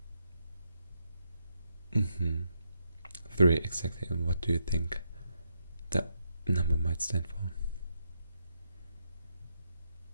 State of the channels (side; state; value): both; inverted; correlation -0.80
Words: 3, exactly. And what do you think that number might stand for?